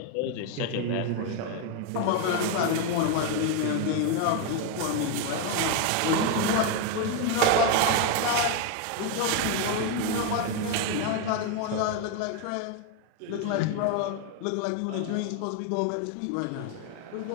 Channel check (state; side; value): different; both; correlation 0.02